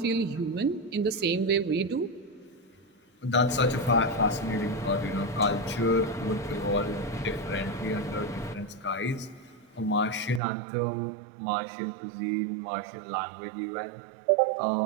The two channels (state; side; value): drops out; left; at 10.4 s